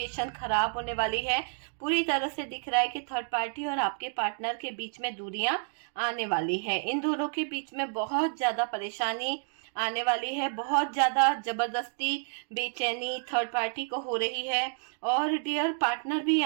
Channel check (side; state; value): left; silent; 58 dB below the other